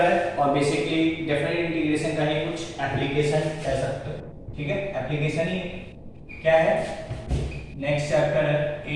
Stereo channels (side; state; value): both; identical; correlation 1.00